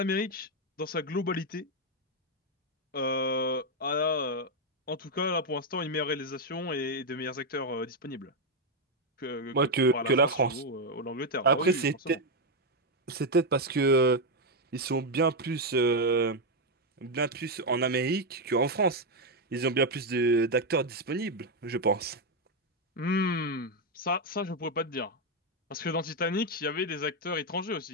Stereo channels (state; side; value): normal; both; correlation 0.04